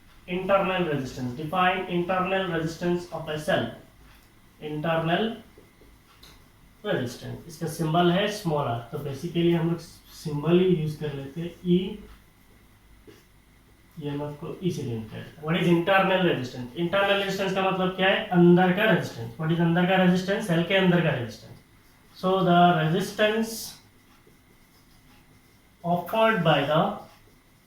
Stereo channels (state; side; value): identical; both; correlation 1.00